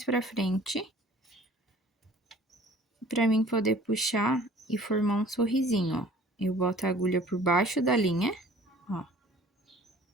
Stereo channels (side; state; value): both; normal; correlation 0.51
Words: pra frente. Pra mim poder puxar e formar um sorrisinho, ó. Eu boto a agulha por baixo da linha, ó.